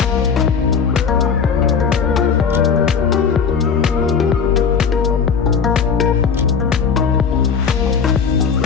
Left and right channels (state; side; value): quieter; right; 6.3 dB